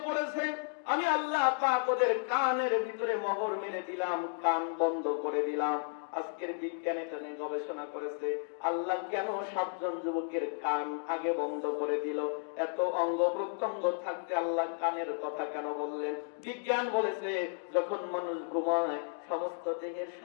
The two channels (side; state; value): right; silent; 56 dB below the other